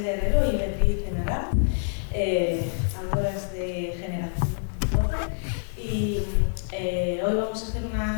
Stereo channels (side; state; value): right; silent; 61 dB below the other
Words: Herrero y Beatriz Enara, autoras de Generación 12, y hoy vamos a hacer